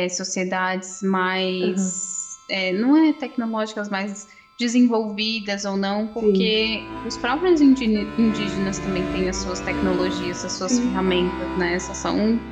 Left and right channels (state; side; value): identical; both; correlation 1.00